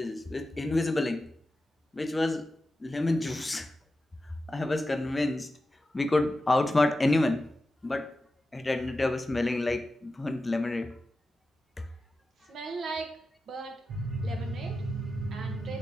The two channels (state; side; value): normal; both; correlation 0.92